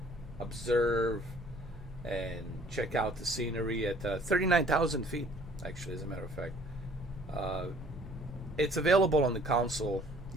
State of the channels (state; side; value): normal; both; correlation 0.57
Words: observe and check out the scenery at 39,000 feet, actually, as a matter of fact. Uh, it's available on the console.